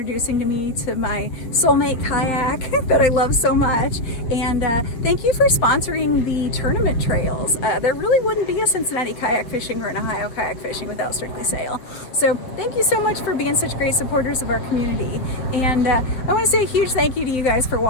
me to my soulmate kayak that I love so much. And thank you for sponsoring the tournament trails. There really wouldn't be a Cincinnati kayak fishing or an Ohio kayak fishing without Strictly Sail. So thank you so much for being such great supporters of our community. And I want to say a huge thank you to you guys for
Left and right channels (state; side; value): late; right; 7.6 ms